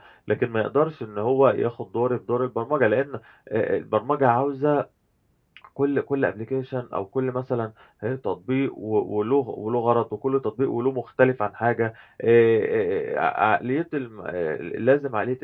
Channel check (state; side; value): identical; both; correlation 1.00